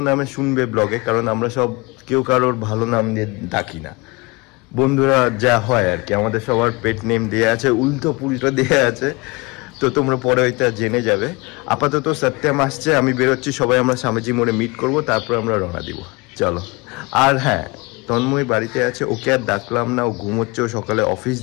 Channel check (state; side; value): quieter; right; 25.9 dB